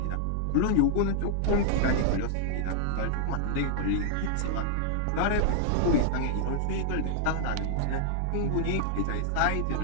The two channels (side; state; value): both; different; correlation -0.01